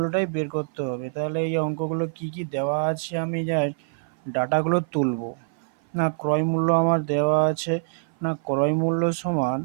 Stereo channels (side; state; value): left; silent; 56 dB below the other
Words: বের করতে হবে। তাহলে এই অঙ্কগুলো কি কি দেওয়া আছে আমি জাস্ট ডাটাগুলো তুলব। না ক্রয় মূল্য আমার দেওয়া আছে, না ক্রয় মূল্য সমান